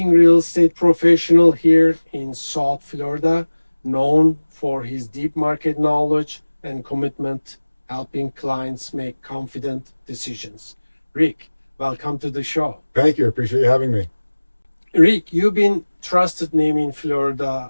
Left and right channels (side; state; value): both; inverted; correlation -1.00